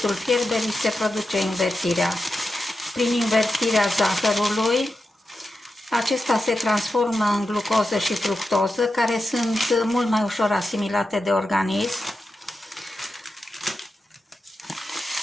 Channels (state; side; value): normal; both; correlation 0.90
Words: fierberii, se produce invertirea. Prin invertirea zahărului, acesta se transformă în glucoză și fructoză, care sunt mult mai ușor asimilate de organism.